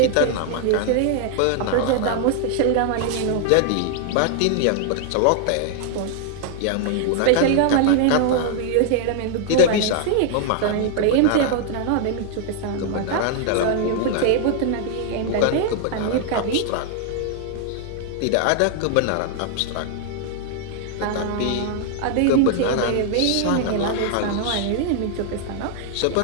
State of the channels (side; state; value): both; different; correlation -0.01